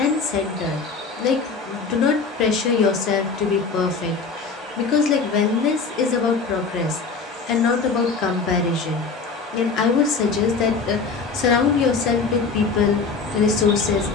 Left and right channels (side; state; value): right; quieter; 4.7 dB